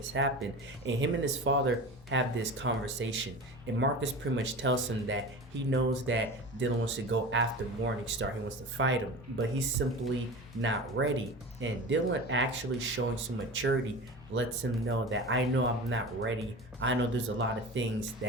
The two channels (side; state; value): both; normal; correlation 0.32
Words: happened. And him and his father have this conversation, and Marcus pretty much tells him that he knows that Dylan wants to go after Morningstar. He wants to fight him, but he's simply not ready. And Dylan, actually showing some maturity, lets him know that I know I'm not ready. I know there's a lot of things